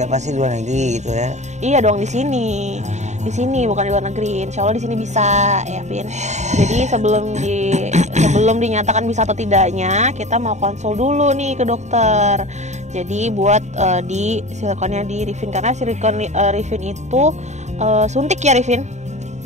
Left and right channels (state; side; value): late; left; 0.34 ms